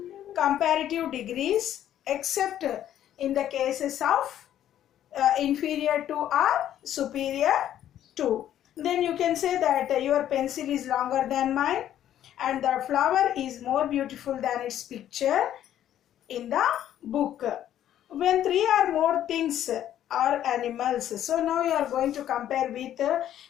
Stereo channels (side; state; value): right; quieter; 11.3 dB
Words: comparative degrees, except in the cases of inferior to or superior to. Then you can say that your pencil is longer than mine and the flower is more beautiful than its picture in the book. When three or more things or animals. So now you are going to compare with